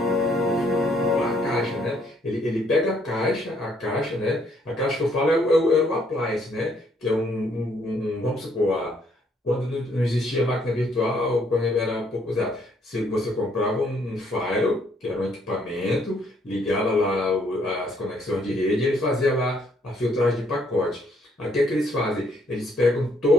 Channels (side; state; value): both; normal; correlation 0.68